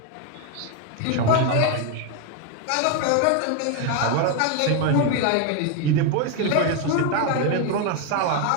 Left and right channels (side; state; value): both; different; correlation 0.01